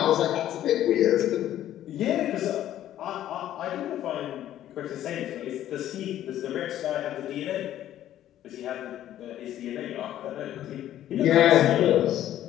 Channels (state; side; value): quieter; right; 12.2 dB